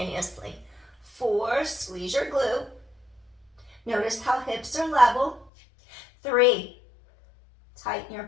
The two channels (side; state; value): right; drops out; at 5.5 s